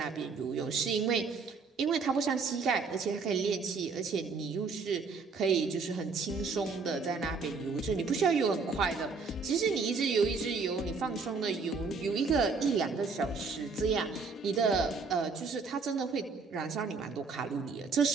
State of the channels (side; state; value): left; quieter; 4.7 dB